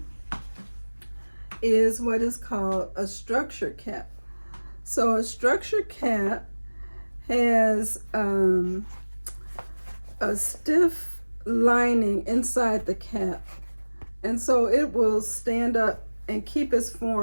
is what is called a structure cap. So a structure cap has a stiff lining inside the cap, and so it will stand up and keep its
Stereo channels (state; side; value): inverted; both; correlation -1.00